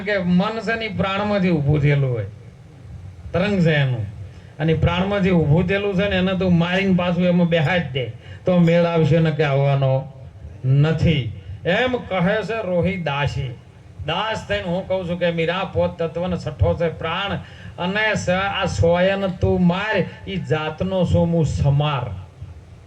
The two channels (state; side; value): identical; both; correlation 1.00